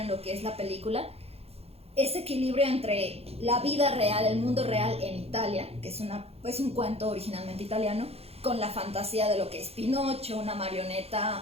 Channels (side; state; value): left; late; 0.29 ms